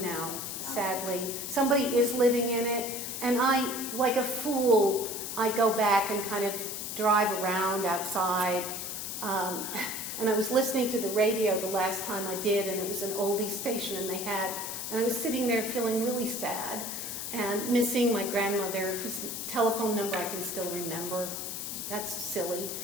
now, sadly. Somebody is living in it, and I, like a fool, I go back and kind of drive around outside. And I was listening to the radio the last time I did, and it was an oldie station, and I was sitting there feeling really sad and missing my grandmother, whose telephone number I can still remember. That's silly.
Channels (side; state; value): left; noise; hiss, 5 dB below the sound